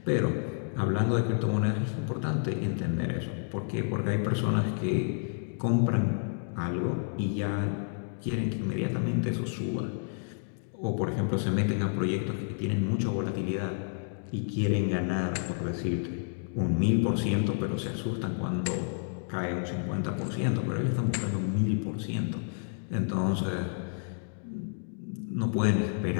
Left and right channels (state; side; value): silent; right; digital silence